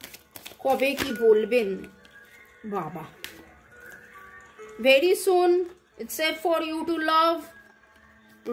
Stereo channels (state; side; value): identical; both; correlation 1.00